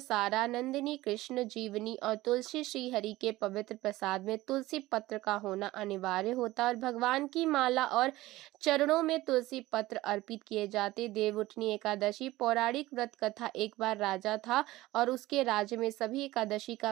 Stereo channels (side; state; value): left; quieter; 17.7 dB